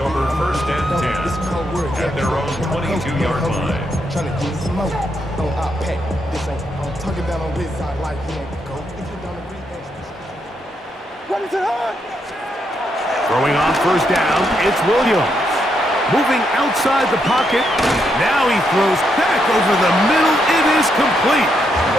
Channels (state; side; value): normal; both; correlation 0.79